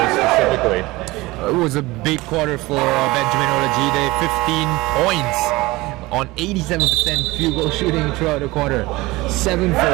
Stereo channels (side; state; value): left; quieter; 20.7 dB